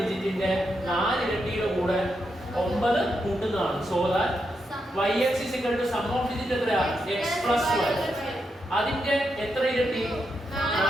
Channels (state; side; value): normal; both; correlation 0.84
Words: 4 ഇരട്ടിയുടെ കൂടെ 9 കൂട്ടുന്നതാണ്. So that yx is equal to sum of digit എത്രയാ? x plus y. അതിന്റെ എത്ര ഇരട്ടി?